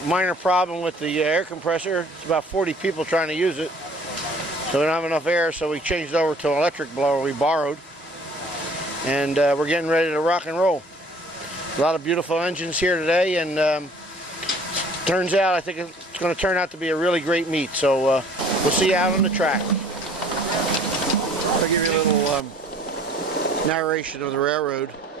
Minor problem with the air compressor. It's about 40 people trying to use it. So we don't have enough air, so we changed over to an electric blower we borrowed. And we're getting ready to rock and roll. A lot of beautiful engines here today, and turns out I think it's going to turn out to be a really great meet. So we'll see you out on the track. I'll give you a little narration of the railroad.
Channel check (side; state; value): both; normal; correlation 0.53